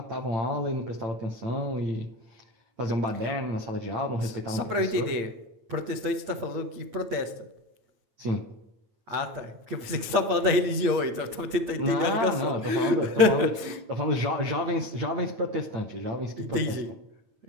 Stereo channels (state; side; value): late; left; 9.0 ms